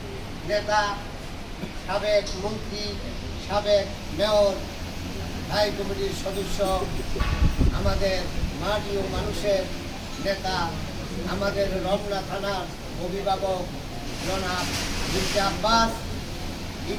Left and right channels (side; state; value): both; identical; correlation 1.00